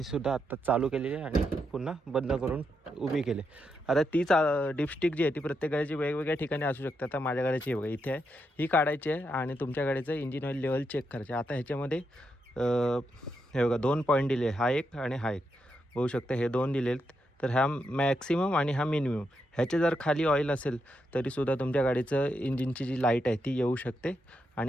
सुद्धा आत्ता चालू केलेली आहे आणि पुन्हा बंद करून उभी केली. आता तीच डिपस्टिक जी आहे ती प्रत्येक गाडीची वेगवेगळ्या ठिकाणी असू शकते. आता माझ्या गाडीची बघा इथे आहे, ही काढायची आहे आणि तुमच्या गाडीचं इंजिन ऑइल लेवल चेक करायचे. आता ह्याच्यामध्ये हे बघा 2 पॉईंट दिले, हा एक आणि हा एक. होऊ शकतं हे 2 दिलेत. तर हा मॅक्सिमम आणि हा मिनिमम. ह्याचे जर खाली ऑइल असेल तरीसुद्धा तुमच्या गाडीचं इंजिनची जी लाईट आहे ती येऊ शकते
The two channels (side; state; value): both; normal; correlation 0.83